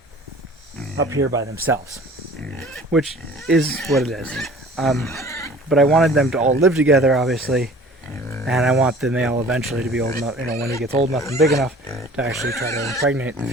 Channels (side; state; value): both; normal; correlation 0.47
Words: up here by themselves, which is what it is. But I wanted them to all live together, obviously, and I want the male eventually to be old enough, when he gets old enough and big enough, to actually try to impregnate the